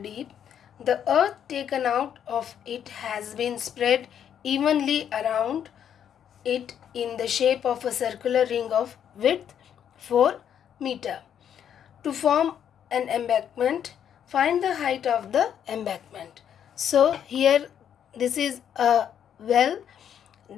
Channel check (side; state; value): right; quieter; 9.1 dB